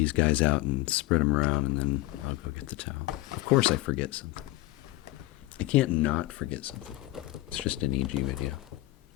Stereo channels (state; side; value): quieter; right; 18.5 dB